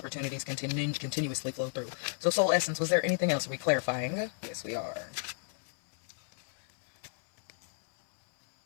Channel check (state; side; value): silent; right; 56 dB below the other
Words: continuously flow through. So soul essence, was there anything else? Are we clarifying? Yes, we are.